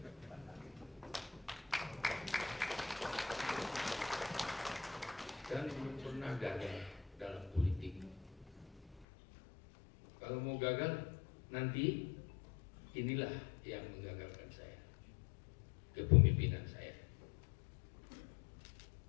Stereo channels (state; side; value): drops out; right; at 9.1 s